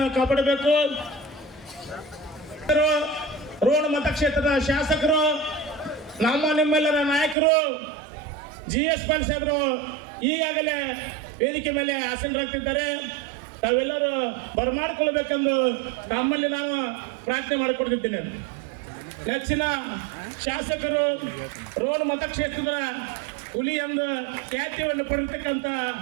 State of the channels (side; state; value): left; drops out; at 7.4 s